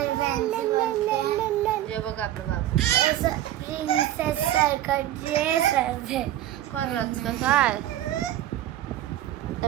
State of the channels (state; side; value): quieter; left; 13.0 dB